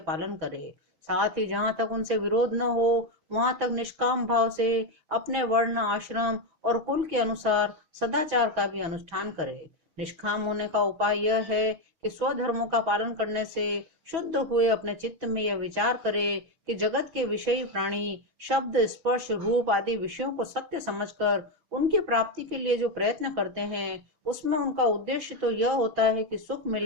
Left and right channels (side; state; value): left; late; 6.1 ms